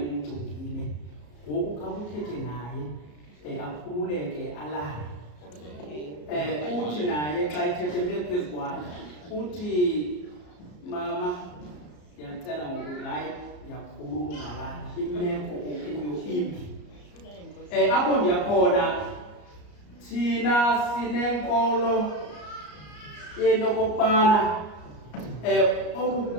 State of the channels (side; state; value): right; late; 34 ms